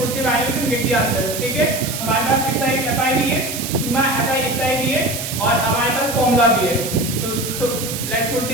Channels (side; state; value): right; noise; hiss, 6 dB below the sound